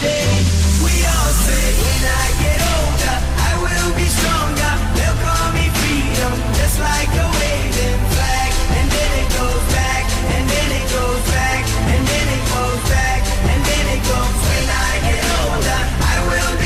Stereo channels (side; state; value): both; identical; correlation 1.00